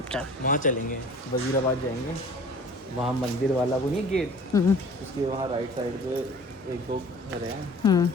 वहाँ चलेंगे, वजीराबाद जाएंगे। वहाँ मंदिर वाला वो नहीं गेट, उसके वहाँ राइट साइड पे 1-2 घर हैं,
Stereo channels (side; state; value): both; normal; correlation 0.46